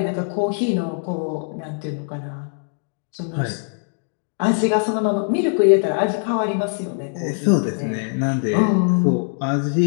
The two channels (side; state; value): right; silent; digital silence